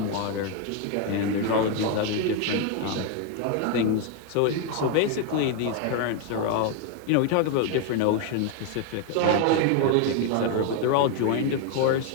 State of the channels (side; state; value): both; different; correlation 0.01